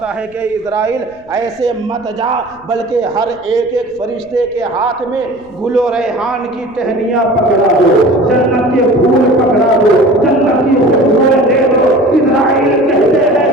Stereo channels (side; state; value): left; noise; rumble, 28 dB below the sound